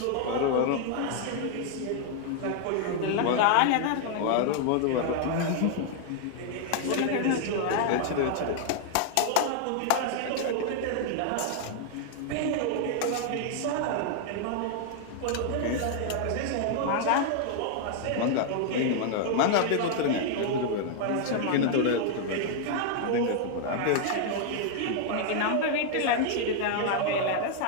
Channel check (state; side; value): different; both; correlation 0.00